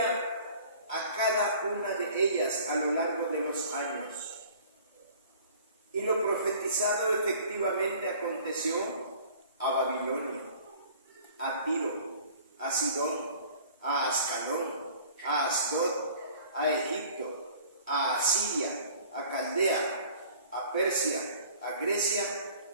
a cada una de ellas a lo largo de los años. Y lo profetizado efectivamente aconteció a Babilonia, a Tiro, a Sidón, a Ascalón, a Asdod, a Egipto, a Asiria, a Caldea, a Persia, a Grecia,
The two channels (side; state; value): both; inverted; correlation -0.49